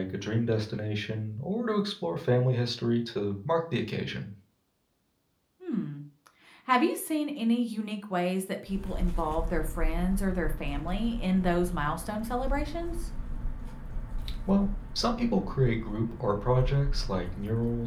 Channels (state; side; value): identical; both; correlation 1.00